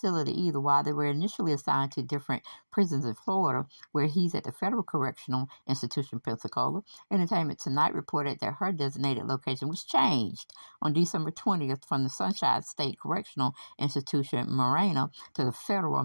either. While they were initially assigned to different prisons in Florida, where he's at the Federal Correctional Institution, Pensacola, Entertainment Tonight reported that her designated location was changed on December 20th from the Sunshine State Correctional Institution, Marina, to the Federal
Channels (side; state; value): both; inverted; correlation -1.00